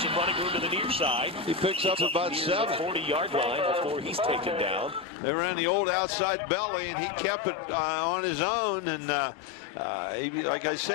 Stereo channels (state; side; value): drops out; right; at 5.1 s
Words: running room to the near side. He picks up about 7. 40-yard line before he's taken down. They ran the old outside belly, and he kept it on his own. And like I